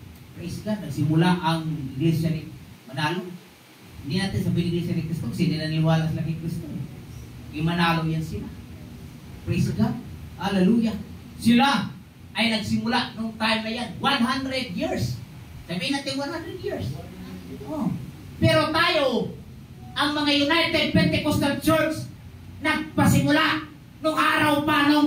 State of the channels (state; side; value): identical; both; correlation 1.00